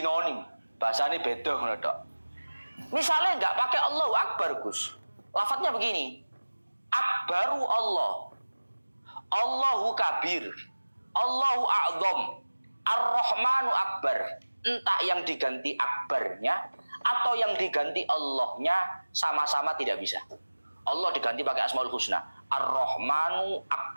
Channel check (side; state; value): both; inverted; correlation -1.00